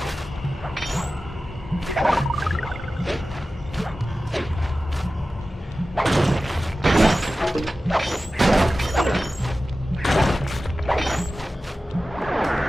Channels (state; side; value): normal; both; correlation 0.95